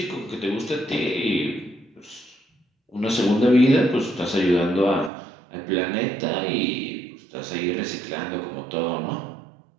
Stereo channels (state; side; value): drops out; left; at 5.1 s